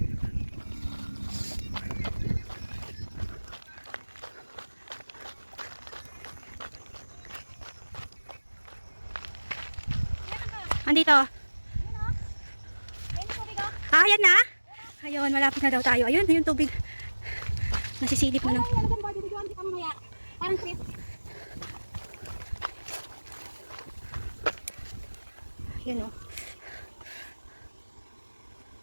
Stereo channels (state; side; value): inverted; both; correlation -1.00